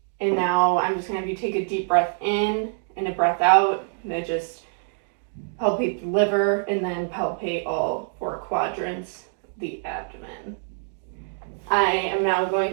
And now I'm just going to have you take a deep breath in and a breath out. And then just palpate the liver and then palpate all 4 quadrants of the abdomen. I am now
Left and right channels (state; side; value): silent; left; digital silence